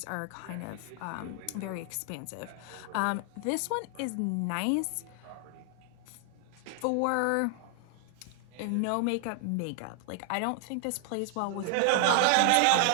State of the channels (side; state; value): both; different; correlation 0.00